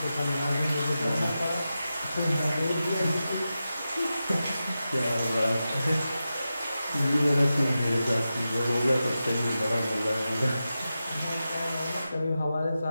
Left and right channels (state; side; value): inverted; both; correlation -0.91